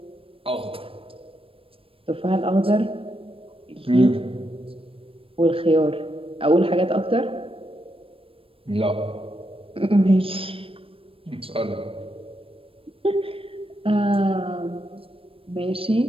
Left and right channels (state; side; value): late; left; 0.27 ms